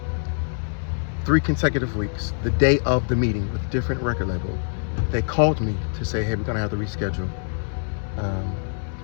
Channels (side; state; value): right; silent; 62 dB below the other